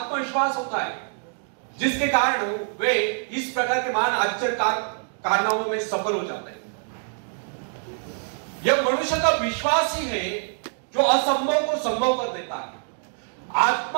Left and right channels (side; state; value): left; silent; 62 dB below the other